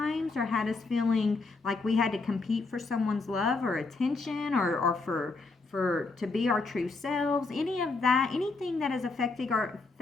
or had us feeling like we had to compete for someone's love or attention, or for to be our true selves. Any of that, anything that has affected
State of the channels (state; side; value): quieter; right; 3.8 dB